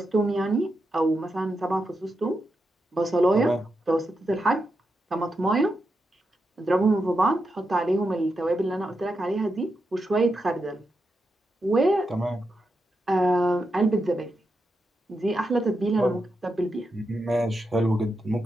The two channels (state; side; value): normal; both; correlation 0.86